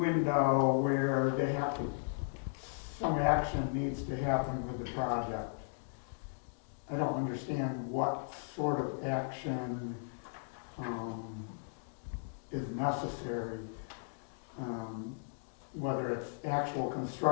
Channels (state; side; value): silent; right; digital silence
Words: where they have to, some action needs to happen with the project. I don't understand what sort of action is necessary, whether it's actual